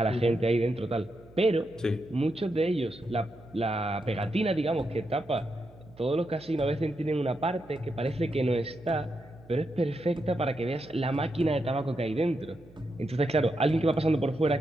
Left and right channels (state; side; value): noise; right; hum, 24 dB below the sound